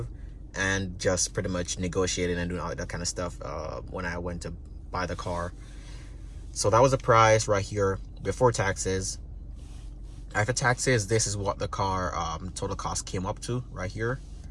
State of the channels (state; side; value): identical; both; correlation 1.00